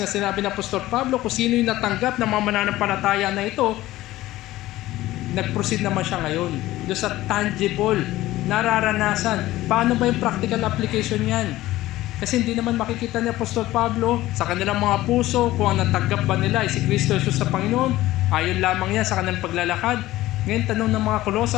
na sinabi ng Apostol Pablo kung sino yung natanggap ng mga mananampalataya na ito, nag-proceed naman siya ngayon doon sa tangible, nararanasan. Paano ba yung practical application yan? Kasi hindi naman makikita ni Apostol Pablo sa kanilang mga puso kung ang natanggap ba nila ay si Kristo Jesus sa Panginoon. Ayon lamang yan sa kanilang paglalakad. Ngayon, tanong ng mga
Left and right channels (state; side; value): quieter; right; 16.3 dB